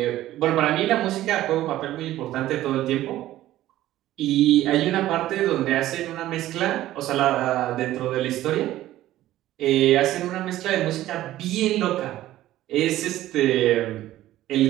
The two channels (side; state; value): left; quieter; 14.5 dB